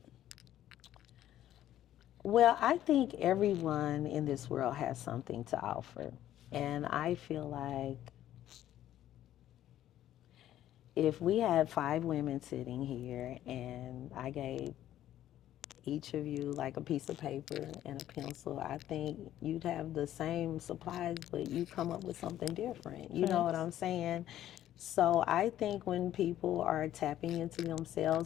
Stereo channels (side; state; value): right; quieter; 12.4 dB